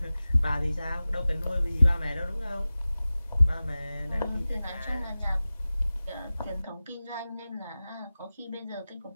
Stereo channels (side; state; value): both; inverted; correlation -0.96